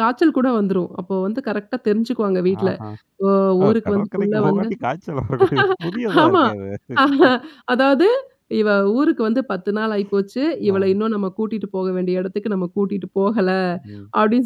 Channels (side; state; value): both; identical; correlation 1.00